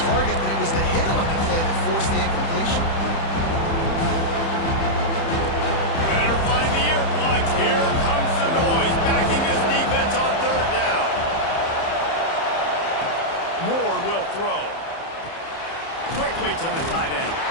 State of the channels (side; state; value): right; late; 30 ms